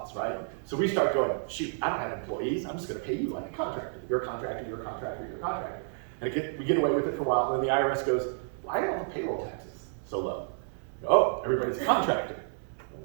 right? So we start going, shoot, I don't have employees. I'm just going to pay you like a contractor. You're a contractor, you're a contractor, you're a contractor. And we get away with it for a while, and then the IRS goes, why are all the payroll taxes so low? Oh, everybody's a contractor.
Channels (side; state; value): left; silent; 57 dB below the other